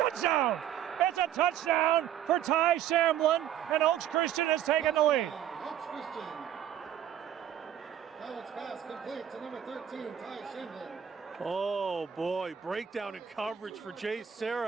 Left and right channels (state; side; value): quieter; left; 10.2 dB